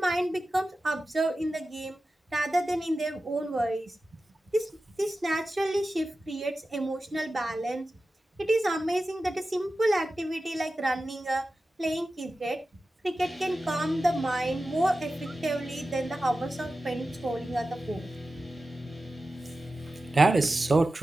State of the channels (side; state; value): both; normal; correlation 0.94